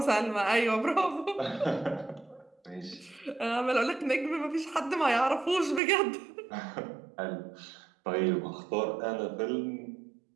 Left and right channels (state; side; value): drops out; left; at 5.8 s